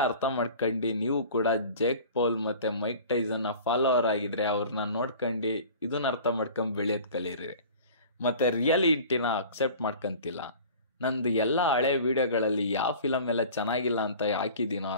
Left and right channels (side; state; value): both; inverted; correlation -0.42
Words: ಅರ್ಥ ಮಾಡ್ಕೊಂಡು ನೀವು ಕೂಡ ಜೇಕ್ ಪೌಲ್ ಮತ್ತೆ ಮೈಕ್ ಟೈಸನ್ನ ಫಾಲೋವರ್ ಆಗಿದ್ರೆ ಅವ್ರನ್ನ ನೋಡ್ಕೊಂಡು ಇದನ್ನ ಅರ್ಥ ಮಾಡ್ಕೊಂಡ್ ಬೆಳೆಯೋದ್ ಕಲೀರಿ. ಮತ್ತೆ ರಿಯಾಲಿಟಿನ ಅಕ್ಸೆಪ್ಟ್ ಮಾಡ್ಕೊಂತಿಲ್ಲ. ನಂದು ಎಲ್ಲ ಹಳೆ ವಿಡಿಯೋಗಳಲ್ಲಿ ಯಾವ ಫಿಲಮ್ ಎಲ್ಲ ಚೆನ್ನಾಗಿಲ್ಲ ಅಂತ ಹಾಕಿದ್ದೀನೋ